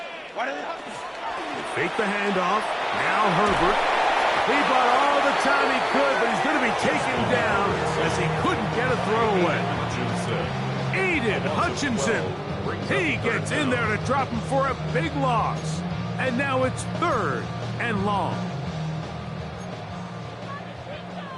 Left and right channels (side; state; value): both; identical; correlation 1.00